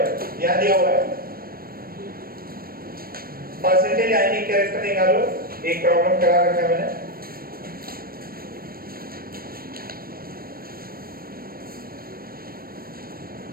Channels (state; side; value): late; left; 0.43 ms